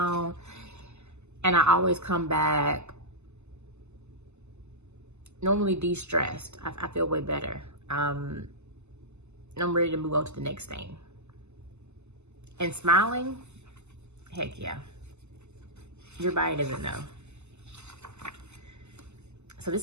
And I always come back normally de-stressed. I feel way better. And I'm ready to move on to the next thing. And smiling, heck yeah. Your body doesn't know. So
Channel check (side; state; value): left; late; 0.82 ms